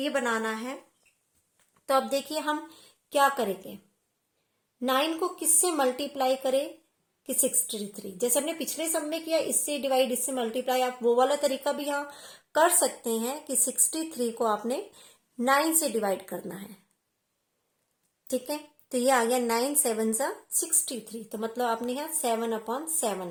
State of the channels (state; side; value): identical; both; correlation 1.00